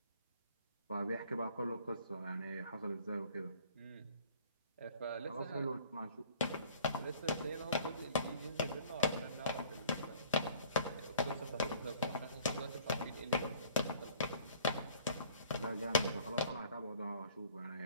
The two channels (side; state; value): both; inverted; correlation -0.52